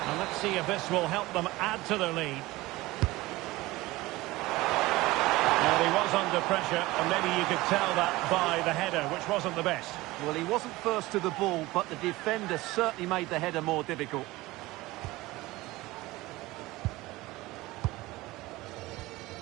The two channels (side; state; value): left; quieter; 19.6 dB